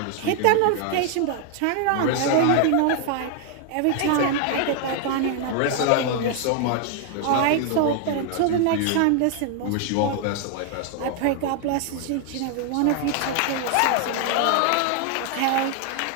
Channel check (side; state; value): both; different; correlation 0.00